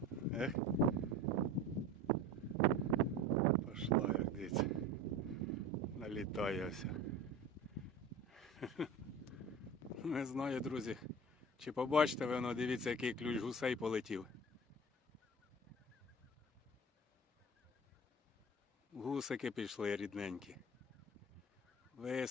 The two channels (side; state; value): both; normal; correlation 0.36